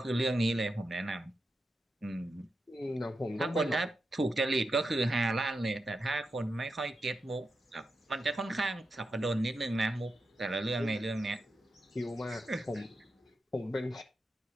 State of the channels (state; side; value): normal; both; correlation 0.88